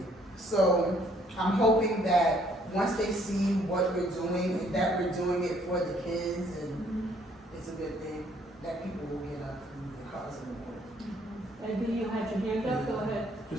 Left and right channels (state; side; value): normal; both; correlation 0.64